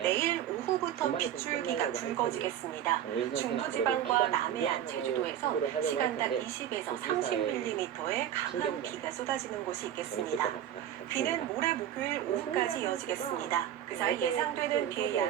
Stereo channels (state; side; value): quieter; left; 10.7 dB